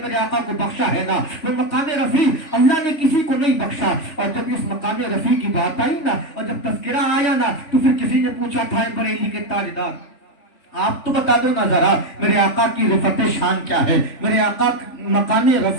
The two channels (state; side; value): late; right; 3.4 ms